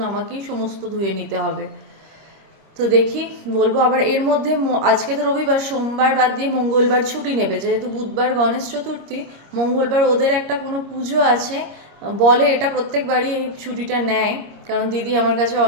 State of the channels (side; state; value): left; late; 26 ms